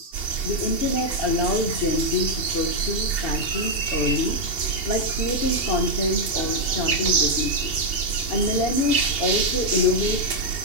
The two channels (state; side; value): late; right; 2.7 ms